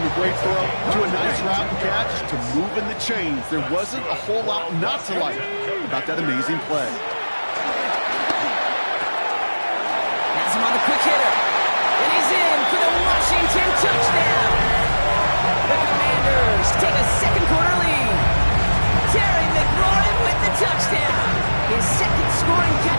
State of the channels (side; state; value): both; inverted; correlation -1.00